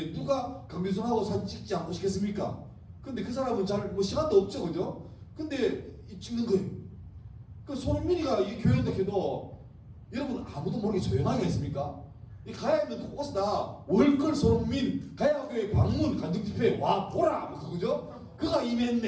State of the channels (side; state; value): both; identical; correlation 1.00